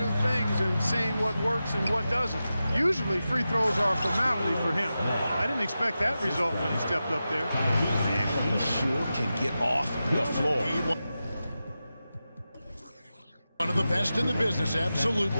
things and seeing what works and what doesn't. Usually free throws are a formality for him. I didn't expect that result when he stepped up there. Man, he sure can get off the floor. One of the best in the business,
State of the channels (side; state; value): both; inverted; correlation -0.92